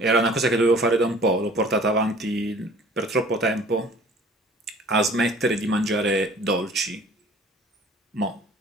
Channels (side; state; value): both; normal; correlation 0.50